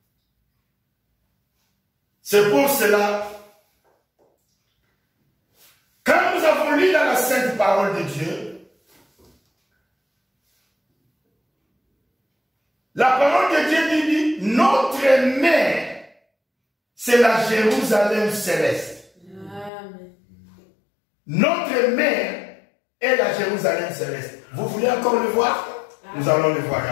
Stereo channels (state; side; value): drops out; right; at 19.7 s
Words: C'est pour cela, quand nous avons lu dans la sainte parole de Dieu, la parole de Dieu dit, notre mère, c'est la Jérusalem céleste. Amen. Notre mère est la Jérusalem céleste. Vous voulez encore le voir? Amen. Nous allons le voir